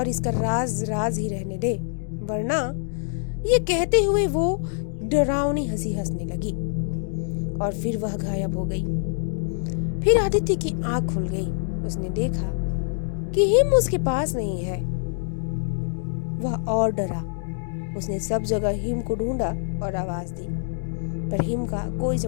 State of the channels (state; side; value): silent; right; 62 dB below the other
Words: इसका राज राज ही रहने दे, वरना। ये कहते हुए वो डरावनी हंसी हंसने लगी और फिर वह गायब हो गई। फिर आदित्य की आंख खुल गई। उसने देखा कि हिम उसके पास नहीं है। वह और डरा। उसने सब जगह हिम को ढूंढा और आवाज दी, पर हिम का कोई